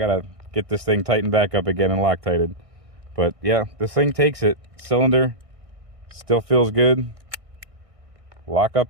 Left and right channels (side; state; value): left; late; 1.6 ms